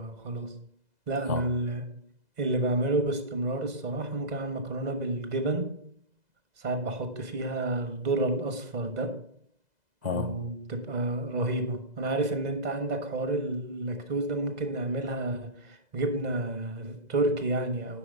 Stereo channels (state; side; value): late; left; 2.0 ms